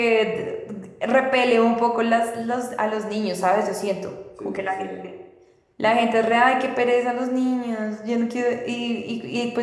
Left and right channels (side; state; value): both; identical; correlation 1.00